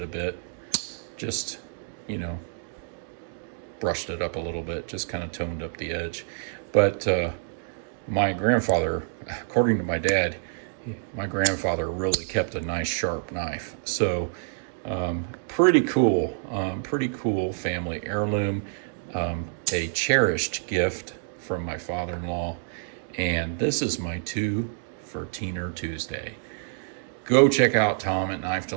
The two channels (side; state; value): left; silent; digital silence